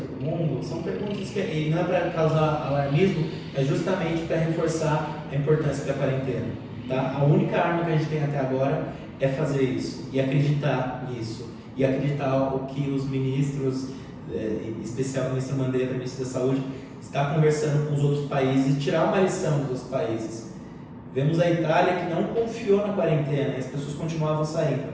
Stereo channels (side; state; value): both; identical; correlation 1.00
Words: mundo? São perguntas que, e não é para causar alarmismo, é justamente para reforçar a importância da quarentena. Tá? A única arma que a gente tem até agora é fazer isso e acreditar nisso. E acreditar o que os ministros, em especial o ministro Mandetta, ministro da Saúde, está conversando com os outros países e tirar uma lição dos outros países. Vemos a Itália que não confiou na quarentena e as pessoas continuavam